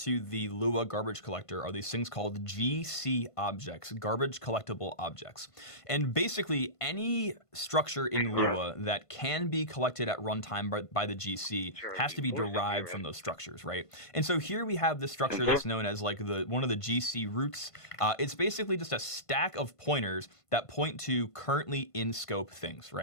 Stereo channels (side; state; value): right; late; 1.5 ms